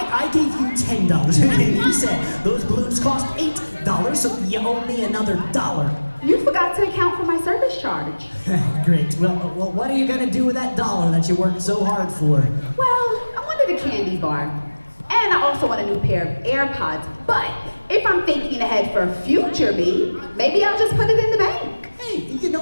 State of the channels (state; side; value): inverted; both; correlation -1.00